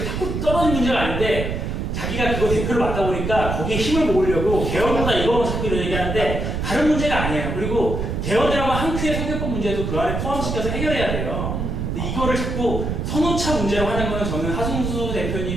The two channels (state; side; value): noise; right; rumble, 2 dB below the sound